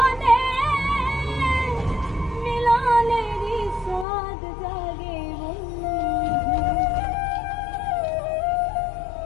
মিলনের স্বাদ জাগে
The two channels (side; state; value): right; drops out; at 4.0 s